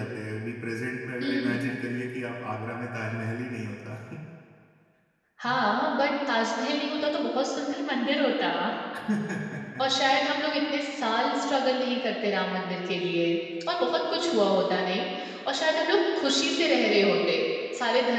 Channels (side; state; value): both; identical; correlation 1.00